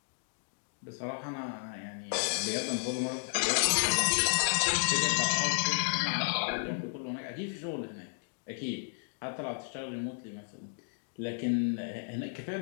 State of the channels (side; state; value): right; silent; digital silence